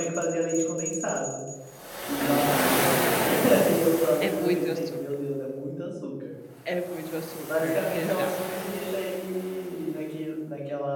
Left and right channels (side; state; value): both; identical; correlation 1.00